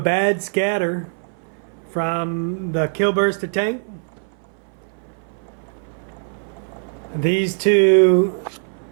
scatter from the Killburster tank, these two,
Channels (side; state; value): left; silent; 61 dB below the other